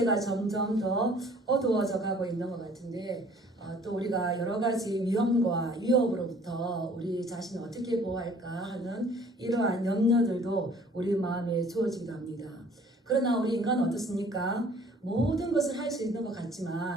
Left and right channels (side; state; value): both; normal; correlation 0.54